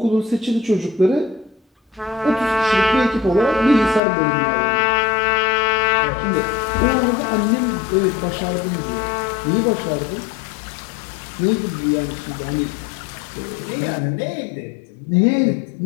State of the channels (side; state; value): right; drops out; at 4.0 s